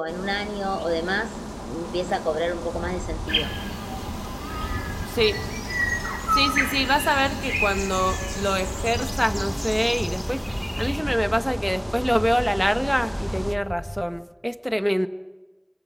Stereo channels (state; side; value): identical; both; correlation 1.00